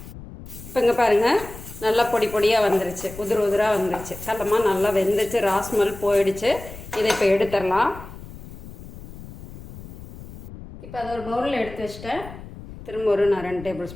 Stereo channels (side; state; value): left; noise; rumble, 14 dB below the sound